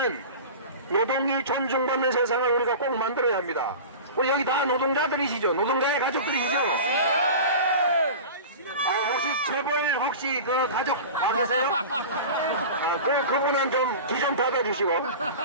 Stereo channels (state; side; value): inverted; both; correlation -0.33